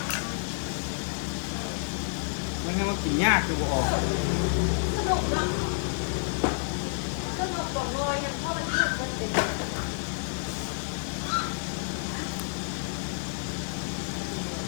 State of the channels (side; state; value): right; silent; digital silence